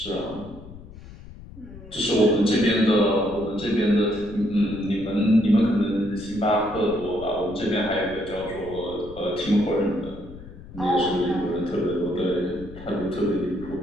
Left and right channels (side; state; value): left; noise; rumble, 16 dB below the sound